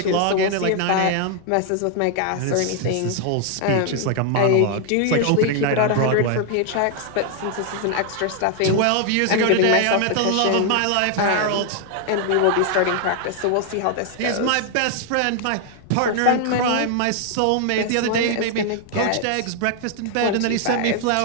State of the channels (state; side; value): different; both; correlation 0.00